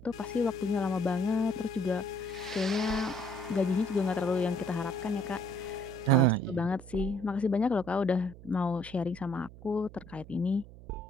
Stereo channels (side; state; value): right; noise; hum, 17 dB below the sound